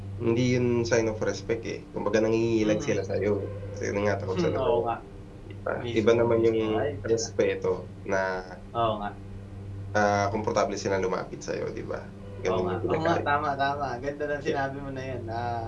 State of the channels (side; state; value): both; identical; correlation 1.00